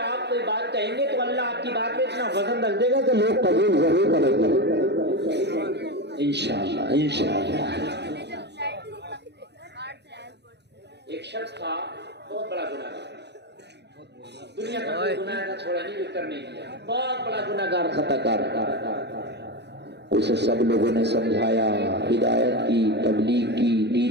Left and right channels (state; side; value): late; left; 0.50 ms